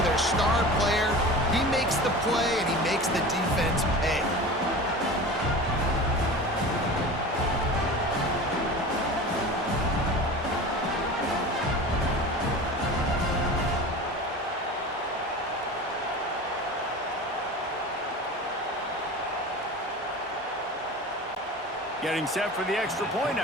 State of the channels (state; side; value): normal; both; correlation 0.34